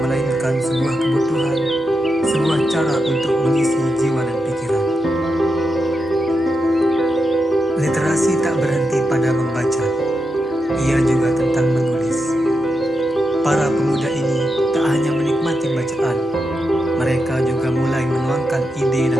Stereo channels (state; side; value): normal; both; correlation 0.87